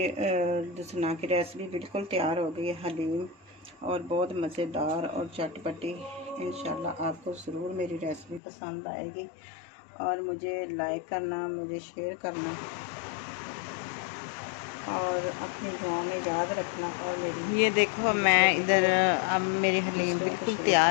दसना की रेसिपी बिल्कुल तैयार हो गई है हलीम, और बहुत मज़ेदार और चटपटी। इंशाल्लाह आपको ज़रूर मेरी रेसिपी पसंद आएगी, और मुझे लाइक करना, मुझे शेयर करना, और अपनी दुआओं में याद रखना। और मेरी ये देखो मैं इधर अब मेरी हलीम बिल्कुल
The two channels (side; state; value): right; drops out; at 8.4 s